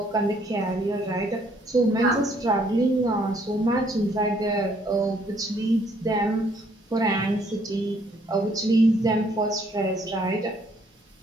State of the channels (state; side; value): normal; both; correlation 0.66